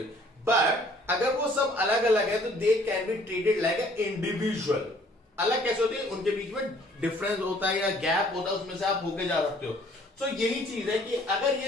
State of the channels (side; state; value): both; normal; correlation 0.58